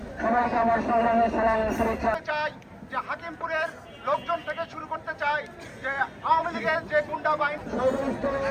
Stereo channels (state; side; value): identical; both; correlation 1.00